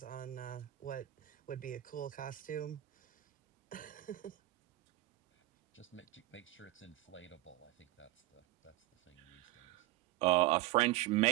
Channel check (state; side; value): quieter; left; 16.8 dB